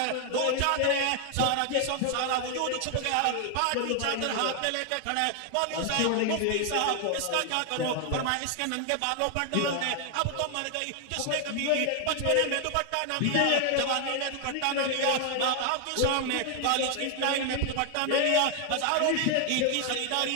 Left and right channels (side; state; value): both; different; correlation 0.00